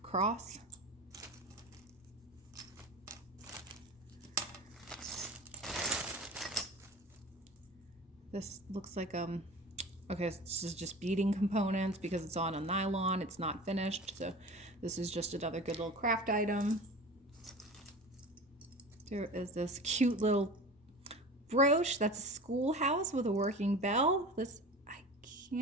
Cross. This looks like okay, this is just beading components because it's on a nylon. It's not finished, so this is just another good little craft item. There is this cute little brooch. That's a schoolhouse with a working bell. This, I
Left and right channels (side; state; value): both; normal; correlation 0.35